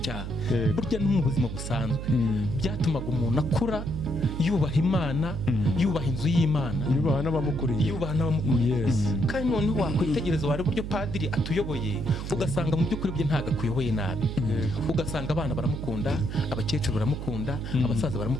Burya no mu buzima busanzwe byatumaga umuntu akura yubaha Imana, yubaha inzu y'Imana, yubaha n'abamukuriye. Kandi noneho wakwitegereza wari buryo padiri atuyoboye, ugasanga mu by'ukuri bye ntago akuyoboye nabi. Ugasanga abana baramukunda, abakecuru baramukunda, abasaza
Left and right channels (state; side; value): noise; right; hum, 6 dB below the sound